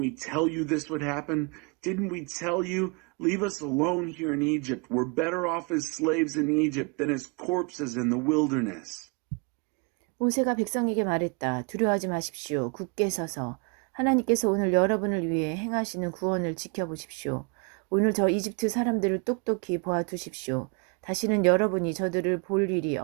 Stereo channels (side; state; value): left; quieter; 32.4 dB